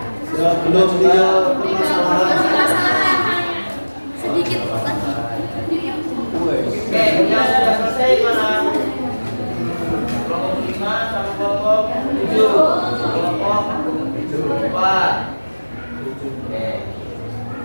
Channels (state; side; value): inverted; both; correlation -1.00